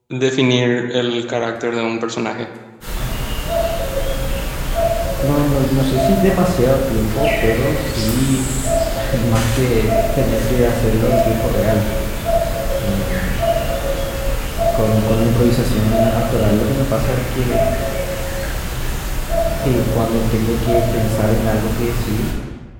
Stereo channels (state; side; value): identical; both; correlation 1.00